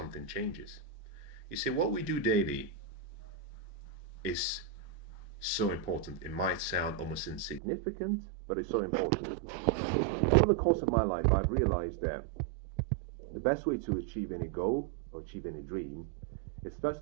changes. You see, what we do daily is so important. It might sound almost insignificant, but it's so important. Over the course of my life, I've realized that the best way to achieve any goal or achieve any dream is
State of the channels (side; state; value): left; drops out; at 7.6 s